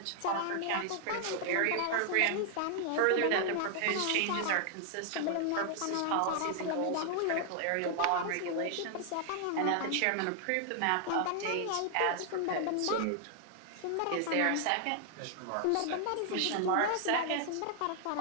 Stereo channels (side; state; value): both; different; correlation 0.00